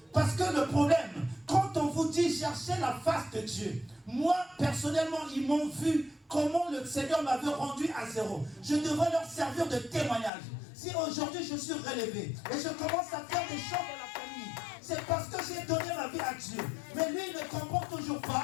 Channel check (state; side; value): drops out; right; at 10.3 s